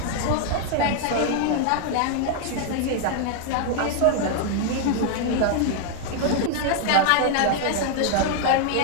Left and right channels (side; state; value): both; different; correlation 0.00